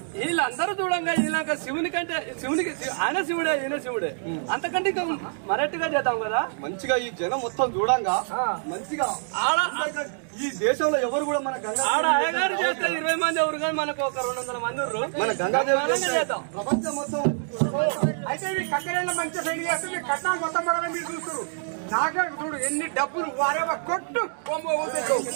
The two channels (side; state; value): left; silent; digital silence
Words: వీళ్ళందరూ చూడంగా వీళ్ళక శివుని కంటే శివునికి ఆయన శివుడే ఈయన శివుడే అంతకంటే ఇంకా మరట్టుగా చేద్దాం కదా. మంచిగా ఈ జనం మొత్తం చూడంగా మంచిగా ఆడ ఈ దేశంలో ఎవరు కూడా మన ఆడ అయ్యగారు చేస్తే 20 మంది ఎవరు కానీ మనకు ఒక 200 మంది మన గంగాదేవి చేద్దాం. ప్రపంచం మొత్తం అయితే మీ కట్టెల మంచి సైడ్ చేస్తే మీ కట్టాలు మొత్తం కూడా మీరు చూస్తారు. నాకే చూడు ఎన్ని డబ్బులు వారేవా కొట్టు